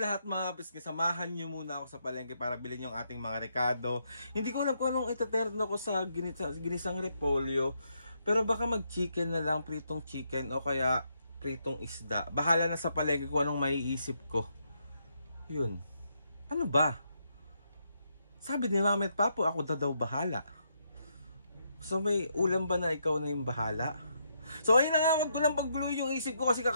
lahat mga kapisngay, samahan nyo muna ako sa palengke para bilhin yung ating mga rekado. Hindi ko alam kung anong itaterno ko sa ginisang repolyo. Pero baka mag-chicken na lang, pritong chicken o kaya pritong isda. Bahala na sa palengke kung anong maiisip ko. Yun. Ano ba? Sabi ni Mami at Papo, ako na daw bahala. So may ulam ba na ikaw na yung bahala? So ayun na nga, wag ko lang pagbuluin yung isip ko kasi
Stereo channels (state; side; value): inverted; both; correlation -0.78